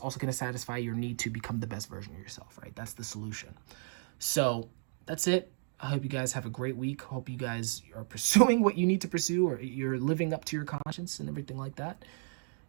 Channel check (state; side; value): silent; left; 55 dB below the other